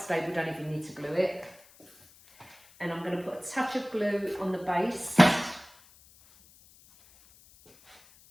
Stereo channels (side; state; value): left; noise; hiss, 26 dB below the sound